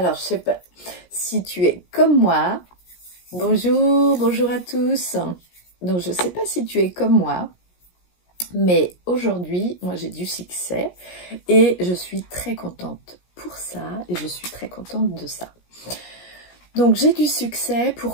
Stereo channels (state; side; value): late; right; 17 ms